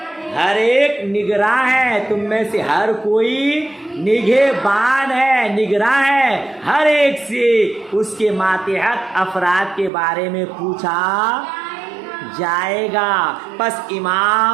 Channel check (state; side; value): drops out; left; at 9.9 s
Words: ہر ایک نگراں ہے, تم میں سے ہر کوئی نگہبان ہے, نگراں ہے, ہر ایک سے اس کے ماتحت افراد کے بارے میں پوچھا جائے گا. پس